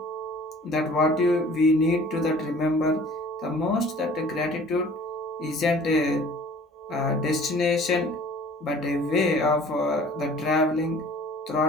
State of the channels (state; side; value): normal; both; correlation 0.49